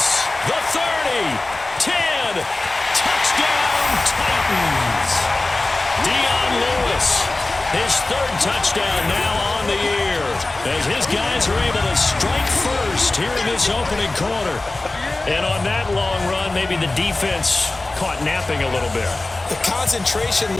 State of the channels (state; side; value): quieter; right; 3.0 dB